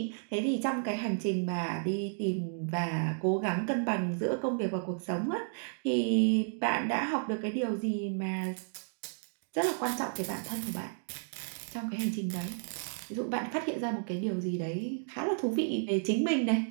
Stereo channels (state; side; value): silent; left; digital silence